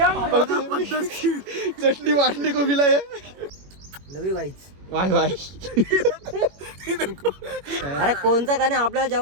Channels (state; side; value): late; left; 21 ms